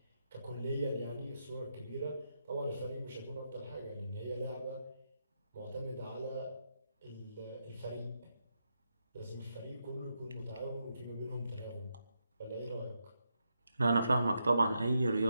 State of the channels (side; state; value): both; inverted; correlation -0.83